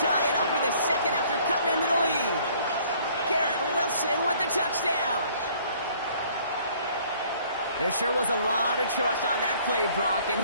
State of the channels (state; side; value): inverted; both; correlation -0.58